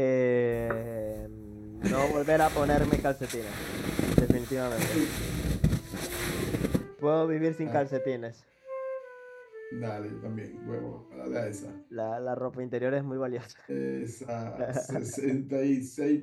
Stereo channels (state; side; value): identical; both; correlation 1.00